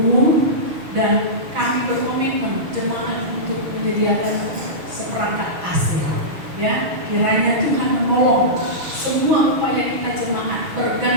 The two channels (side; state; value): left; late; 6.6 ms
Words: dan kami berkomitmen jemaat untuk menyediakan seperangkat AC. Ya, kiranya Tuhan menolong semua upaya kita jemaat